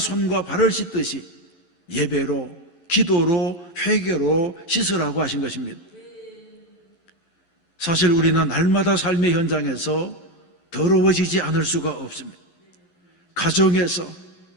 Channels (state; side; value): late; right; 11 ms